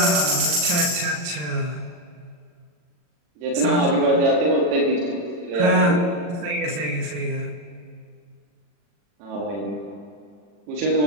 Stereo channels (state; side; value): late; left; 40 ms